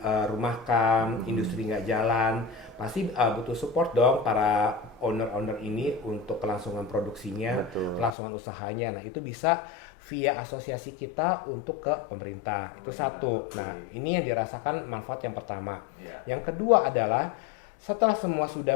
industri nggak jalan, pasti butuh support dong para owner-owner ini untuk kelangsungan produksinya, Betul. kelangsungan usahanya. Nah itu bisa via asosiasi kita untuk ke pemerintah. Itu satu. Oke. Nah ini yang dirasakan manfaat yang pertama. Ya. Yang kedua adalah setelah semua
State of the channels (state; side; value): drops out; right; at 8.1 s